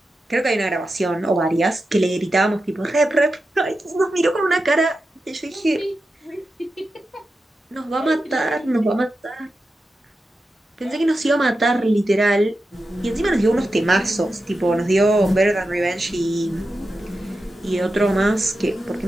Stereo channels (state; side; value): normal; both; correlation 0.90